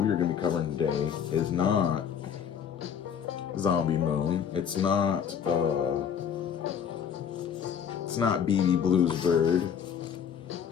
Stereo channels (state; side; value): quieter; right; 7.9 dB